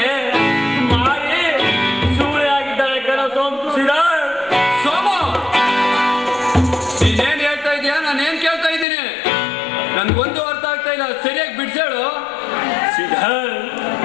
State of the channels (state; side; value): drops out; right; at 8.8 s